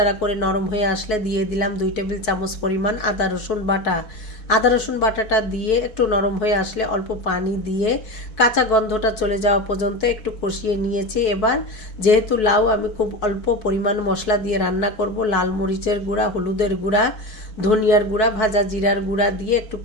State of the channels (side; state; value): right; late; 4.6 ms